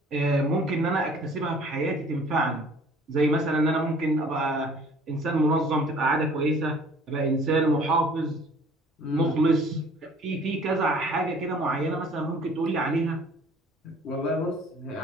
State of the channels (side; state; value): both; normal; correlation 0.52